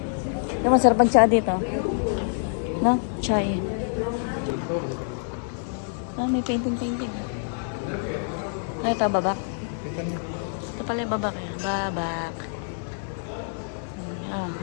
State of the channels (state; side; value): silent; right; digital silence